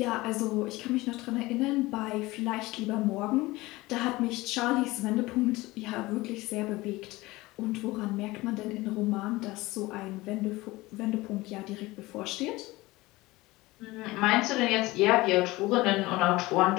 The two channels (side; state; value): right; quieter; 20.2 dB